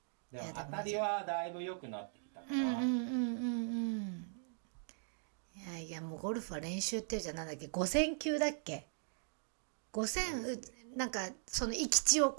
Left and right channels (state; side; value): silent; left; digital silence